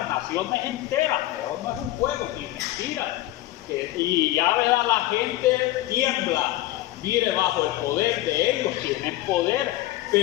naciones enteras. Pero no es un juego, ni mentira. Y ya, ¿verdad? La gente tiembla, mire, bajo el poder de ellos, tienen poder,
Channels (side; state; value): right; quieter; 16.1 dB